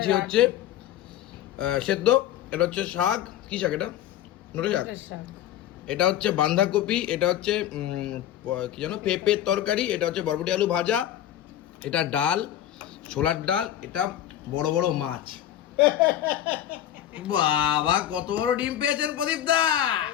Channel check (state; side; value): quieter; right; 11.7 dB